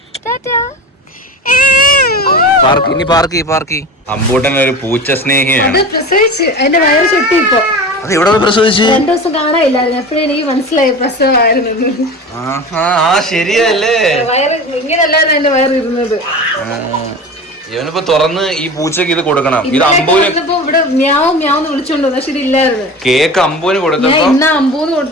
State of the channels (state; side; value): normal; both; correlation 0.32